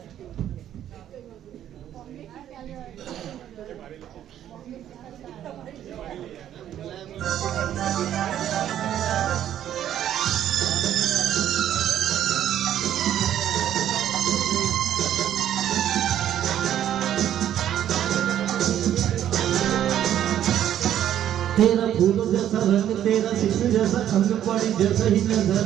तेरा फूलों जैसा रंग तेरा शीशे जैसा अंग पड़ी जैसा ही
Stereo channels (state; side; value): quieter; left; 11.0 dB